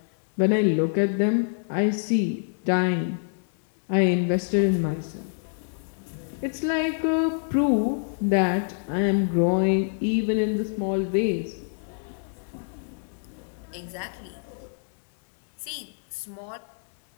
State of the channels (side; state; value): right; silent; 61 dB below the other